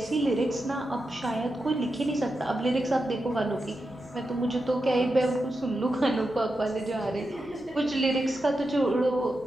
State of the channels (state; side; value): normal; both; correlation 0.89